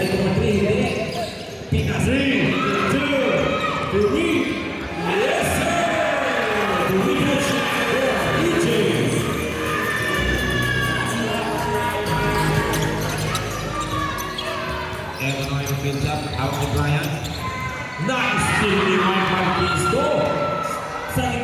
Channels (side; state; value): both; identical; correlation 1.00